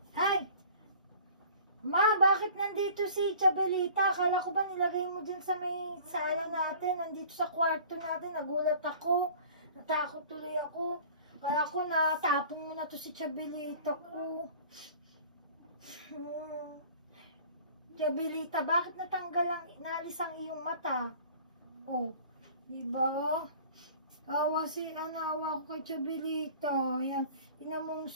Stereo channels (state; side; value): inverted; both; correlation -0.46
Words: Hi! Ma, bakit nandito si Chabelita? Akala ko ba nilagay mo dyan sa may sala natin? Nandito sa kwarto natin. Nagulat ako. Natakot tuloy ako. Kaya ako natapong mo na to si Chabelita ko. Chabelita, bakit natanggal ang, naalis ang iyong mata? Oh, diba? Awa awa ko kay Chabelita. Ayan, tingnan mo ang